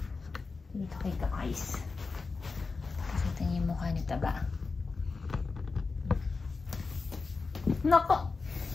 Dito kay Ka-Ice. Kasi ito yung mukha ni Taba. Nako!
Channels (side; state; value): right; quieter; 4.3 dB